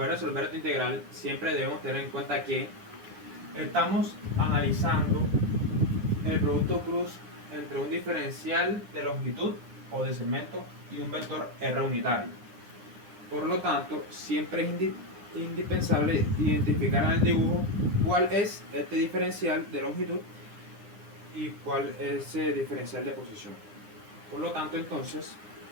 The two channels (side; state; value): left; late; 9.8 ms